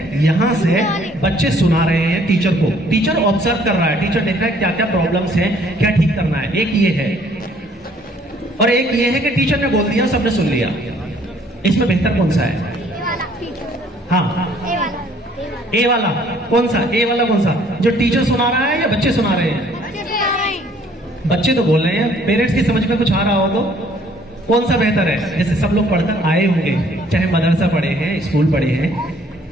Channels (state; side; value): normal; both; correlation 0.60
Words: यहां से बच्चे सुना रहे हैं टीचर को। टीचर ऑब्जर्व कर रहा है, टीचर देख रहा है क्या क्या प्रॉब्लम्स हैं, क्या ठीक करना है। एक ये है और एक ये है कि टीचर ने बोल दिया, सबने सुन लिया। इसमें बेहतर कौन सा है? हाँ, ए वाला कौन सा? ए वाला कौन सा, जो टीचर सुना रहा है या बच्चे सुना रहे हैं? बच्चे तो बोल रहे हैं। पेरेंट्स की समझ में कुछ आ रहा हो तो कौन सा बेहतर है? जैसे सब लोग पढ़कर आए होंगे, चाहे मदरसा पढ़े हैं, स्कूल पढ़े हैं।